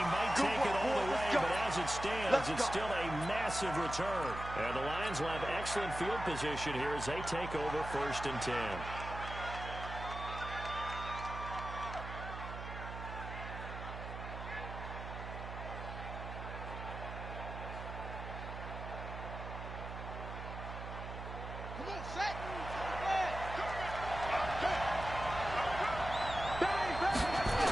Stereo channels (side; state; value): right; noise; hum, 8 dB below the sound